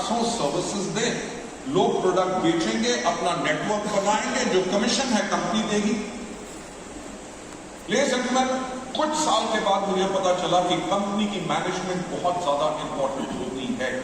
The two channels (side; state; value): both; identical; correlation 1.00